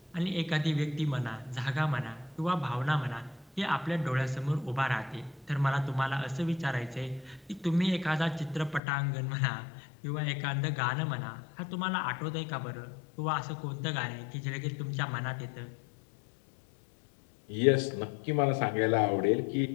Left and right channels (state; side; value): drops out; right; at 8.8 s